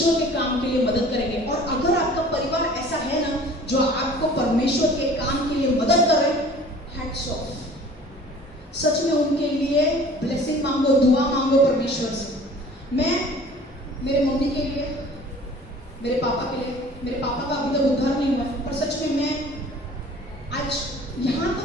के काम के लिए मदद करेंगे, और अगर आपका परिवार ऐसा है ना जो आपको परमेश्वर के काम के लिए मदद करे, हैट्स ऑफ। सच में उनके लिए ब्लेसिंग मांगो, दुआ मांगो परमेश्वर से। मैं मेरे मम्मी के लिए, मेरे पापा के लिए, मेरे पापा का अभी तक उद्धार नहीं हुआ, पर सच में मैं आज यहाँ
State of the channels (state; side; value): normal; both; correlation 0.48